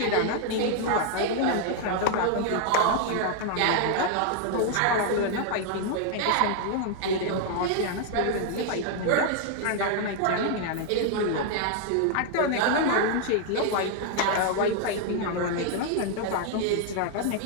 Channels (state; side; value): different; both; correlation 0.00